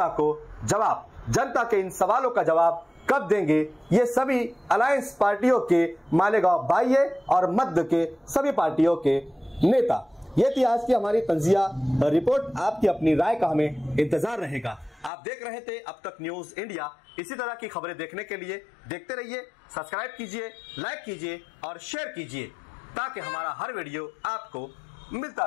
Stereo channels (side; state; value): right; drops out; at 15.1 s